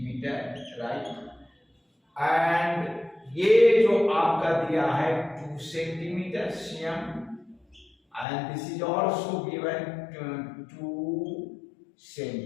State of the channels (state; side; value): drops out; right; at 8.2 s